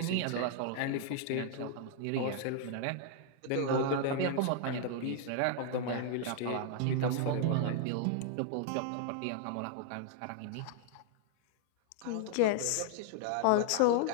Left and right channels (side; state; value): both; different; correlation 0.00